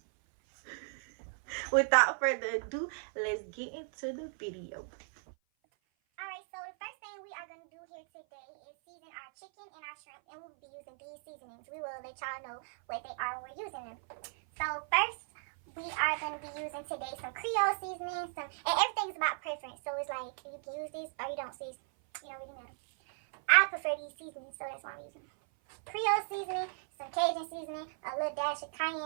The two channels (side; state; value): left; silent; 54 dB below the other